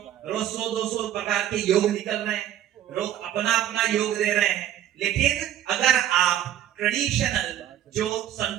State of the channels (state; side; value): quieter; left; 11.4 dB